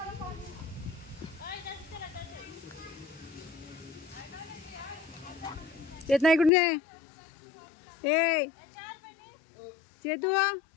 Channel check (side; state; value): right; drops out; at 6.5 s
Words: येत नाही कुठे ए चेतू.